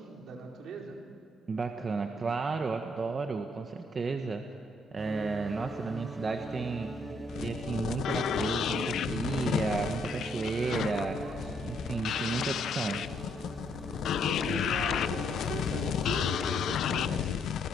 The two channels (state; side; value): normal; both; correlation 0.71